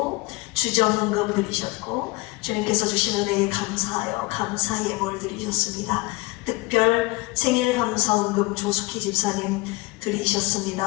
주정헌금 드리셨고 주님께서 주신 은혜에 감사하여 감사 예물 드리셨습니다. 특별 생일 감사헌금 조숙희 집사님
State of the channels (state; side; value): quieter; right; 22.6 dB